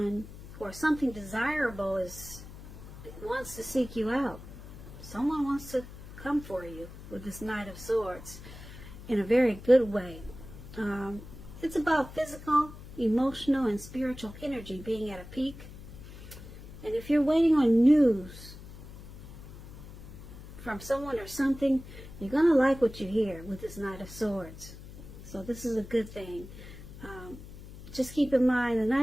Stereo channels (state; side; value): noise; left; hum, 15 dB below the sound